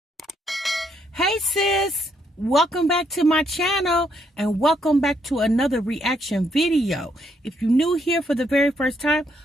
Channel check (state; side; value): normal; both; correlation 0.73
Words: sis, welcome back to my channel and welcome back to another reaction video. If you're new here for the very first time,